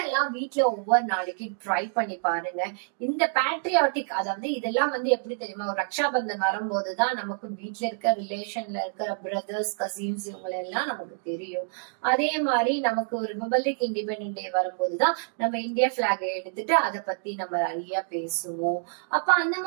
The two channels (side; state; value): left; silent; digital silence